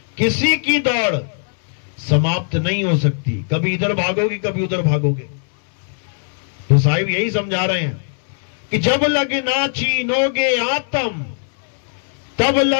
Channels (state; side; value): silent; right; 66 dB below the other